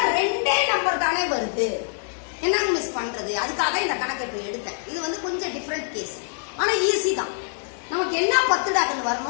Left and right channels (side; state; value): right; silent; digital silence